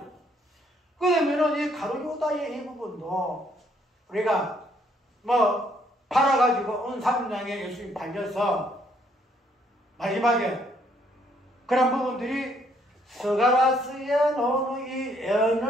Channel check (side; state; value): both; normal; correlation 0.68